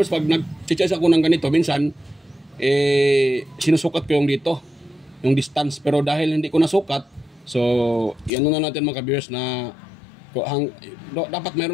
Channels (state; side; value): drops out; right; at 8.3 s